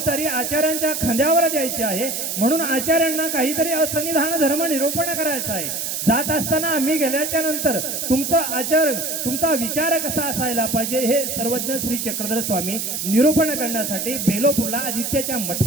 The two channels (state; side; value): noise; right; hiss, 3 dB below the sound